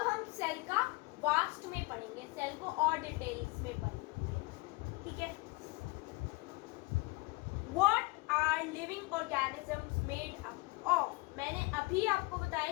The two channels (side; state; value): right; quieter; 24.9 dB